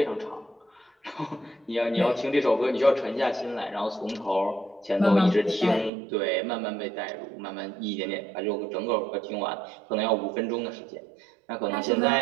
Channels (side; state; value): left; drops out; at 5.9 s